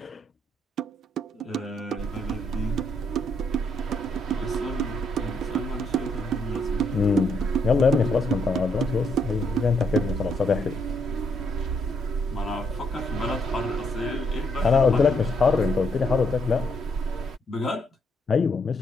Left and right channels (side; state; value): both; normal; correlation 0.74